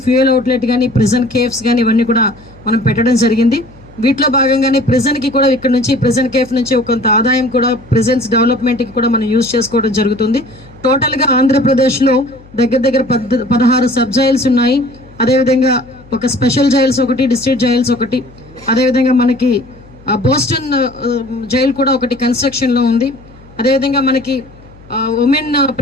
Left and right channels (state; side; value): noise; left; hum, 24 dB below the sound